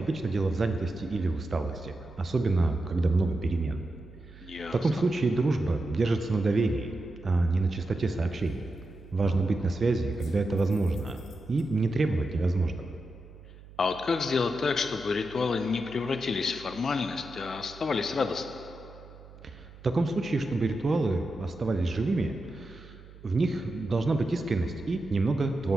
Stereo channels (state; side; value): noise; right; hum, 19 dB below the sound